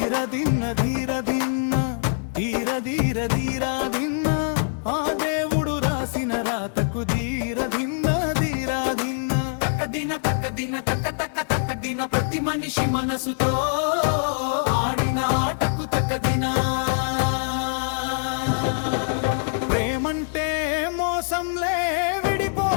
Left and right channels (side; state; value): right; silent; digital silence